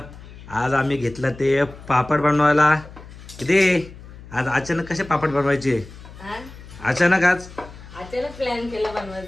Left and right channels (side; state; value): left; noise; hum, 17 dB below the sound